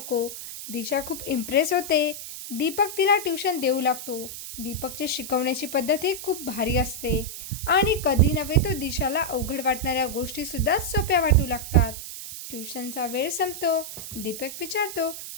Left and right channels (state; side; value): noise; right; hiss, 10 dB below the sound